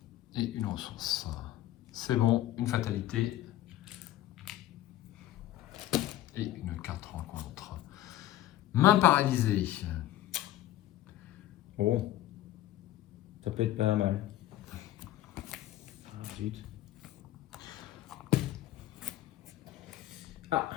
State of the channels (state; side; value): quieter; right; 14.2 dB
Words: Et une ressource. C'est bon, une fatalité. Et une carte rencontre. Main paralysée. Bon. Ça peut être pas mal. Ah, zut. Ah,